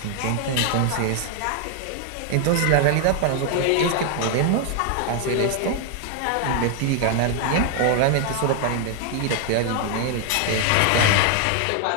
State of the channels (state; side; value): different; both; correlation 0.00